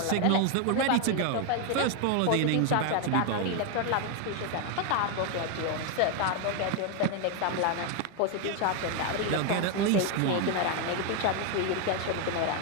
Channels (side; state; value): both; different; correlation 0.01